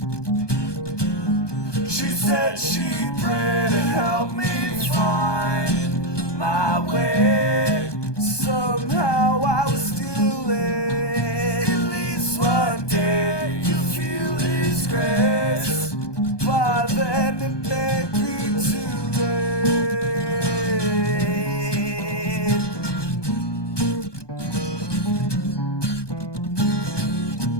She said she'd pray to help me find my way. Somehow I was still late. At least one day you'll feel His grace. By then it may be too late.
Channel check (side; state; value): right; late; 1.2 ms